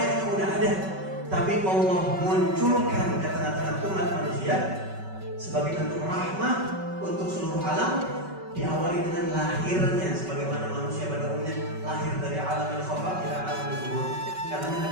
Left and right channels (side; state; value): left; late; 5.3 ms